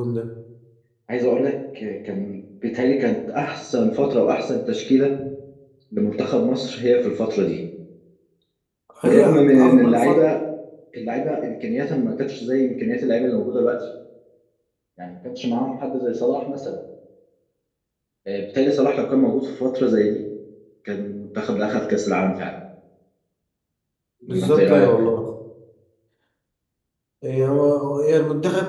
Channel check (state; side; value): identical; both; correlation 1.00